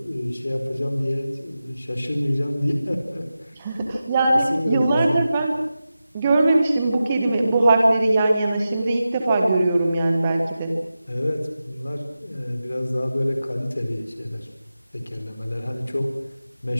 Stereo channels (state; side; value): inverted; both; correlation -0.92